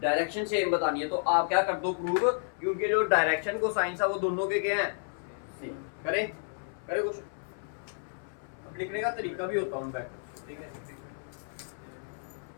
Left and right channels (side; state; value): right; silent; 57 dB below the other